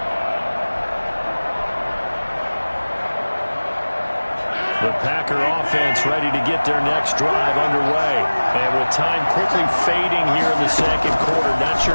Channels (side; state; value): both; inverted; correlation -1.00